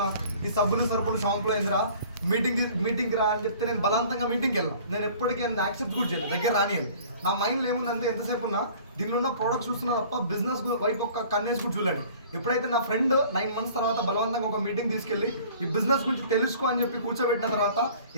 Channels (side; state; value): both; inverted; correlation -0.49